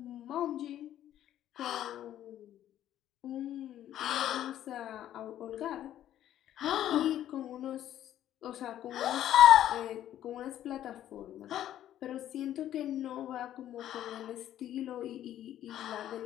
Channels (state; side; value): quieter; right; 11.9 dB